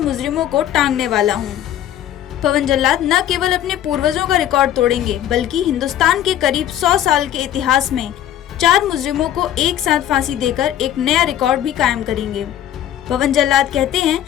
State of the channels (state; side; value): quieter; right; 11.5 dB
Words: को टांगने वाला हूँ। पवन जल्लाद न केवल अपने पूर्वजों का रिकॉर्ड तोड़ेंगे बल्कि हिंदुस्तान के करीब 100 साल के इतिहास में 4 मुजरिमों को एक साथ फांसी देकर एक नया रिकॉर्ड भी कायम करेंगे। पवन जल्लाद कहते